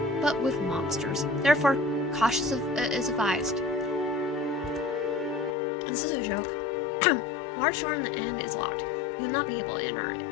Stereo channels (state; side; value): drops out; right; at 5.6 s